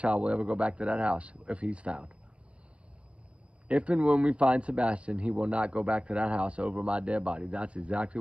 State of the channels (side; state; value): left; late; 0.061 ms